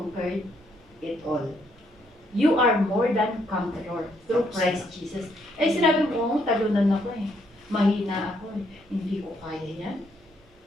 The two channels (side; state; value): both; normal; correlation 0.72